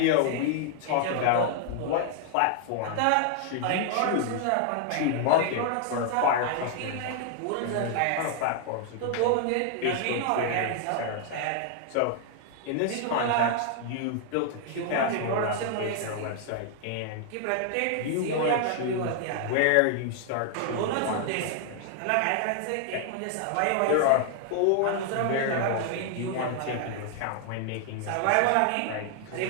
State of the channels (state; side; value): different; both; correlation 0.00